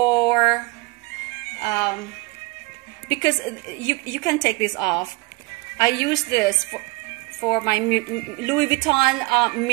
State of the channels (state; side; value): quieter; left; 25.1 dB